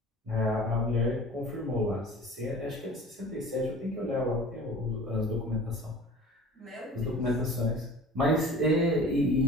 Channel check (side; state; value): both; normal; correlation 0.42